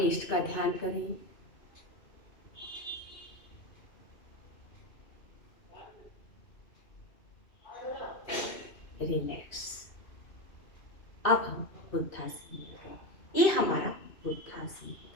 इष्ट का ध्यान करें। रिलैक्स। अब हम बुद्धासन में गए। ये हमारा बुद्धासन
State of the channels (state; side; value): late; right; 2.6 ms